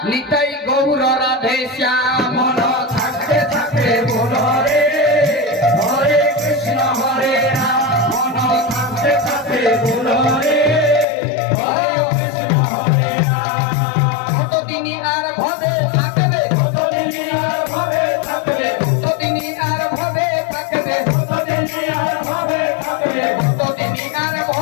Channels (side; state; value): right; drops out; at 11.1 s